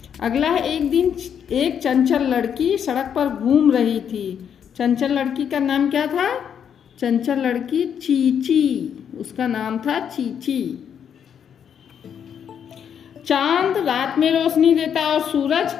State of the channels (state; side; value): quieter; right; 8.2 dB